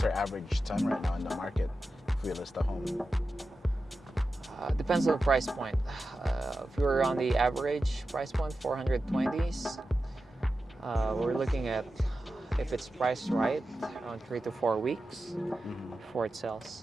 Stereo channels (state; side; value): normal; both; correlation 0.92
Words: our average time right now in the market if we list a home? Depends on the price point. If you're on the average price point, 420s, we're looking at, if it's priced right, around 3 to 4 weeks before it